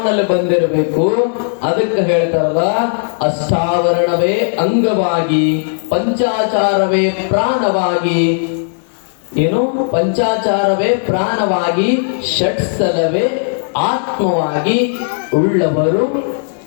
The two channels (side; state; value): right; silent; digital silence